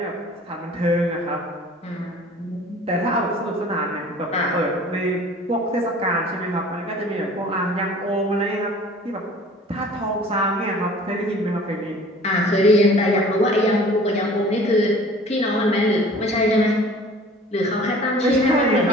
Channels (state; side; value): normal; both; correlation 0.47